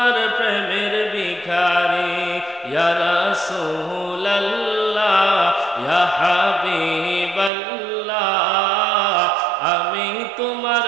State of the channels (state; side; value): drops out; left; at 7.5 s